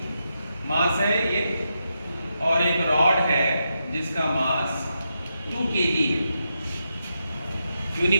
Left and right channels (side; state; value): both; inverted; correlation -0.85